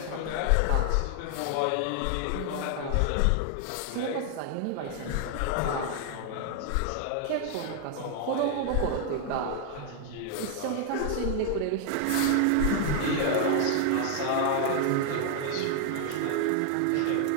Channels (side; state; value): both; different; correlation 0.00